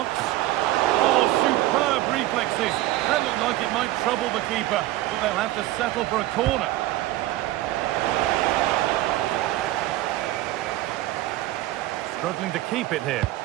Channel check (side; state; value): left; quieter; 16.1 dB